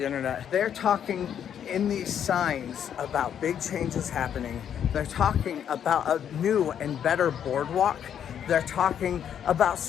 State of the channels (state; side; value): quieter; right; 9.0 dB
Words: internet. They're talking in these signs about big changes happening. They're talking about a new and better boardwalk. They're talking about